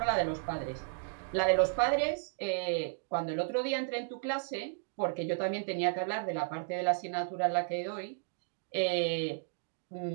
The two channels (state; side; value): silent; left; digital silence